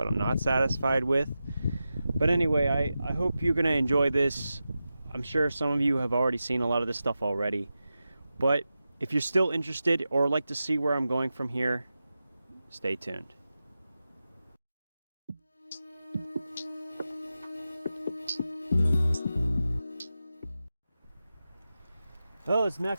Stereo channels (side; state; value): both; inverted; correlation -0.92